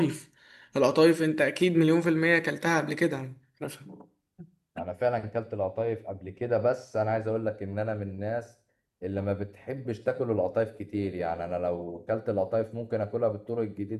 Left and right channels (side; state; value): both; identical; correlation 1.00